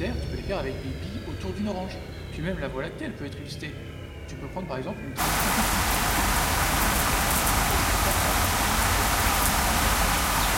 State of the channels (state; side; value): identical; both; correlation 1.00